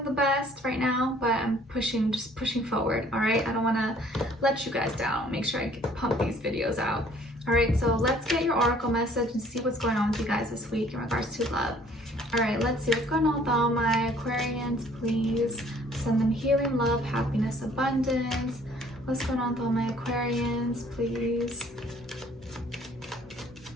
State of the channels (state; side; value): normal; both; correlation 0.57